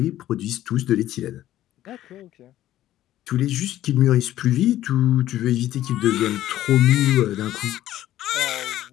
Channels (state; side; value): quieter; right; 13.5 dB